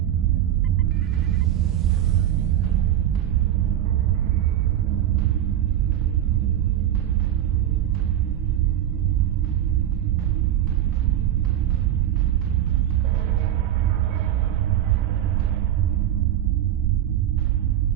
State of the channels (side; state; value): left; quieter; 11.5 dB